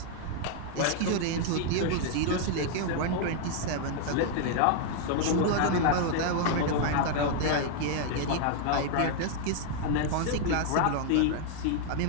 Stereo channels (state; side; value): different; both; correlation 0.00